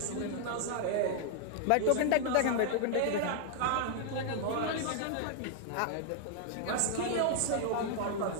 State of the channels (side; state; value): both; different; correlation 0.00